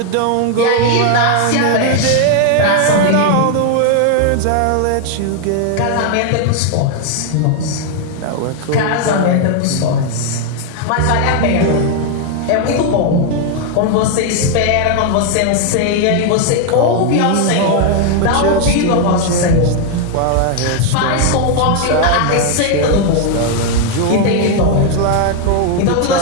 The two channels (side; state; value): both; different; correlation 0.00